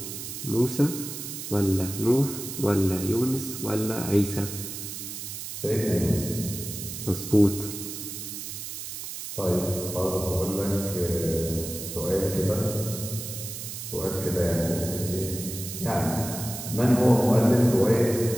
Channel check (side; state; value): right; noise; hiss, 8 dB below the sound